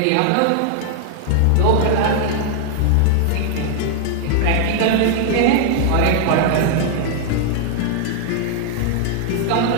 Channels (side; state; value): both; different; correlation -0.01